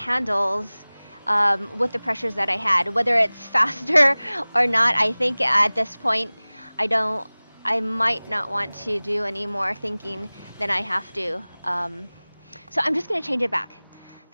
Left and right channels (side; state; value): both; inverted; correlation -1.00